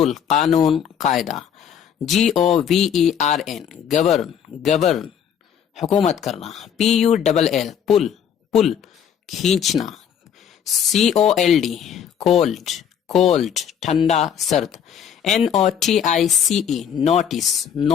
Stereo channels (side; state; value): right; quieter; 8.4 dB